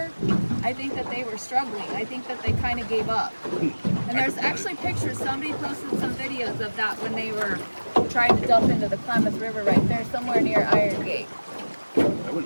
I think that they were struggling. I think that they kind of gave up. And there's actually pictures, somebody posted some videos of that when they were trying to dump into the Klamath River right there, somewhere near Iron Gate. I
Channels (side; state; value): both; inverted; correlation -1.00